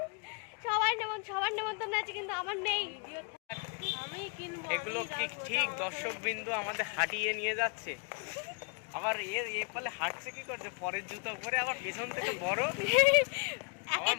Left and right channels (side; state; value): right; quieter; 38.3 dB